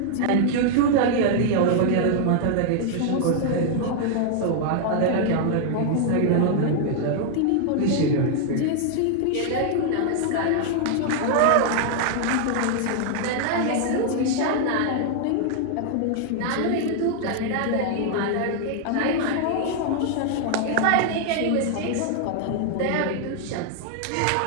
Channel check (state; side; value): different; both; correlation 0.00